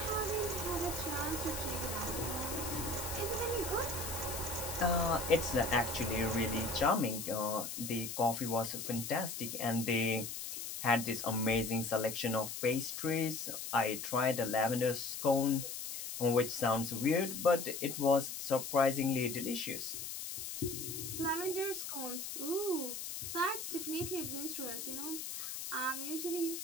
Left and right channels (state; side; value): noise; left; hiss, 6 dB below the sound